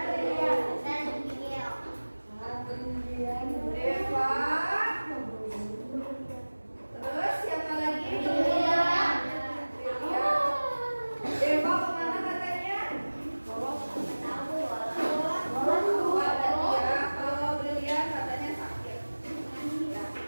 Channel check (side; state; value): both; inverted; correlation -1.00